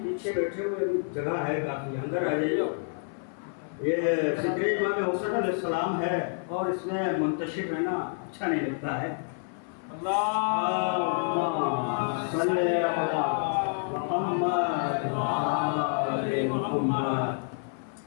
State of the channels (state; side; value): silent; right; 55 dB below the other